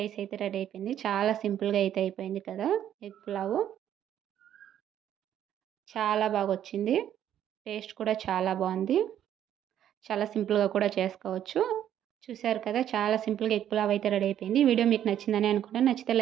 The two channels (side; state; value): left; quieter; 10.6 dB